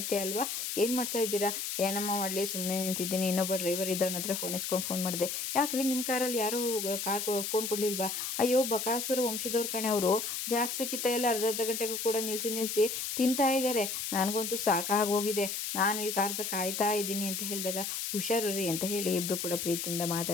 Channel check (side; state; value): left; noise; hiss, 3 dB below the sound